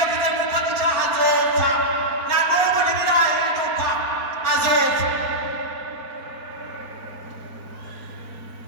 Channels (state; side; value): late; left; 4.4 ms